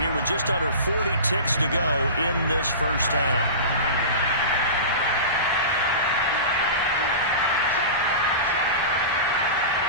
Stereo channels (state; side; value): inverted; both; correlation -0.31